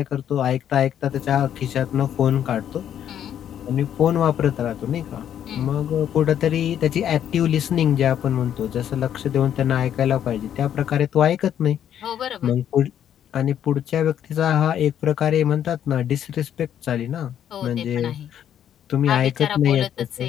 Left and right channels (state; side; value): quieter; right; 9.9 dB